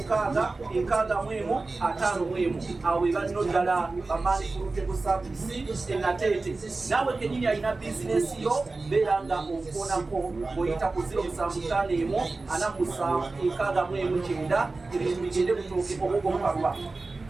awo we balino ddala bamaani pulutable service enateete naawe kenyini alina bizinesi yo beera nga okuonako ng'oyita ku 07544769 ebintu bigende butooke obwogomukalwa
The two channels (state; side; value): quieter; left; 3.5 dB